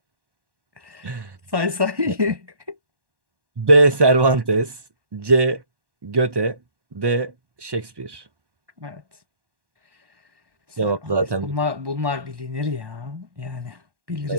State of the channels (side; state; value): left; late; 1.1 ms